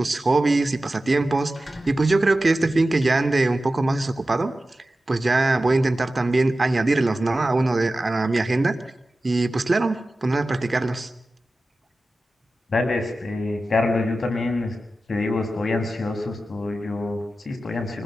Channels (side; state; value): both; normal; correlation 0.94